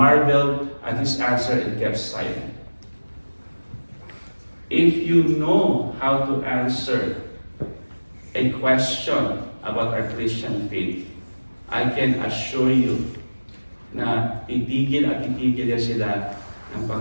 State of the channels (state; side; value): inverted; both; correlation -1.00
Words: at his answer and kept silent. If you know how to answer a question about our Christian faith, I can assure you na titigil at titigil yan sila ng